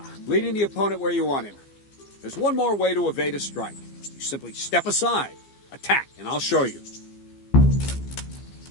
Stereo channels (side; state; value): right; late; 15 ms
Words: leading the opponent where you want him. There's one more way to evade a strike. You simply step aside, attack, and I'll show you.